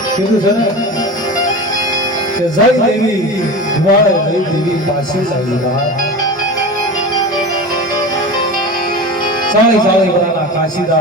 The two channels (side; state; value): both; normal; correlation 0.29